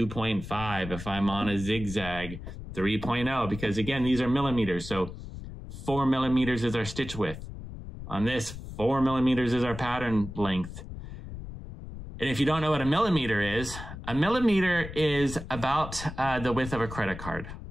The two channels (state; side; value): noise; left; rumble, 11 dB below the sound